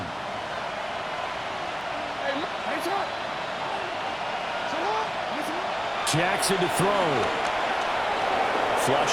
Jackson to throw.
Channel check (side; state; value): both; identical; correlation 1.00